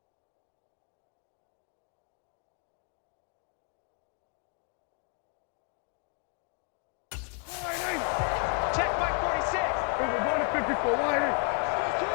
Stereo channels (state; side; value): quieter; right; 37.4 dB